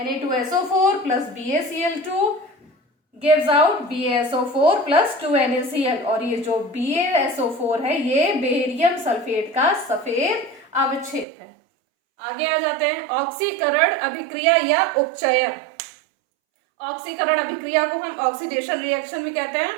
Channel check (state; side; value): drops out; left; at 11.2 s